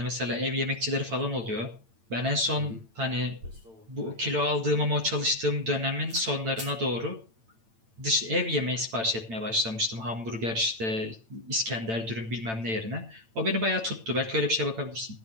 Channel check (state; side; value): late; left; 8.9 ms